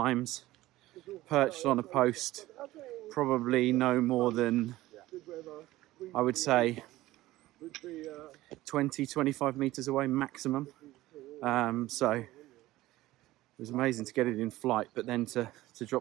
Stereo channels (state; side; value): quieter; left; 16.9 dB